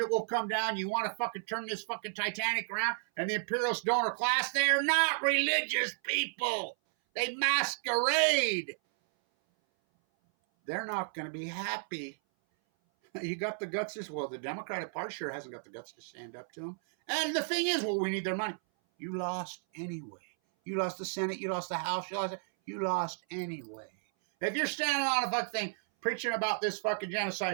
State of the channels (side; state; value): left; silent; 56 dB below the other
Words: will come down. You want to fucking turn this fucking Titanic around? And the imperialist donor class, they're not religious people. They masquerade. They're not going to be happy. You got the guts as well. The Democratic Party sure hasn't got the guts to stand up to them. And the thing is, well, we need their money. You lost anyway. You lost the Senate. You lost the House. You lost anyway. If you're standing on a fucking thing preaching about this fucking